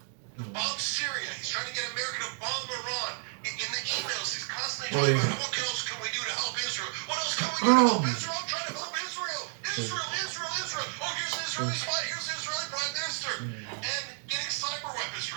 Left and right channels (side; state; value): left; silent; 57 dB below the other